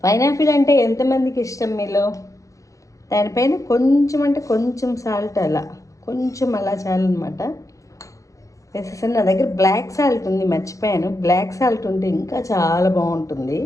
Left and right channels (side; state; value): right; late; 0.16 ms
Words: పైనాపిల్ అంటే ఎంతమందికి ఇష్టం మీలో? దానిపైన కొంచెం అంటే కొంచెం సాల్ట్, అలా కొంచెం అలా చాలన్నమాట వేసేసాను. నా దగ్గర బ్లాక్ సాల్ట్ ఉంది, మర్చిపోయాను. బ్లాక్ సాల్ట్ ఉంటే ఇంకా చాలా బాగుంటుంది.